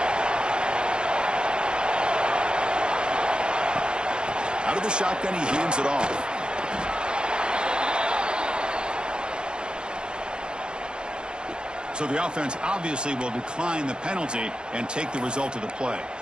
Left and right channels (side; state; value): left; late; 0.049 ms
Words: Out of the shotgun, he hands it off. So the offense obviously will decline the penalty and take the result of the play.